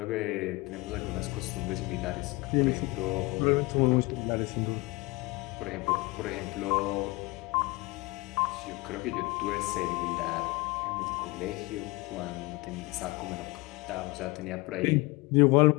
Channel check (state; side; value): quieter; right; 23.9 dB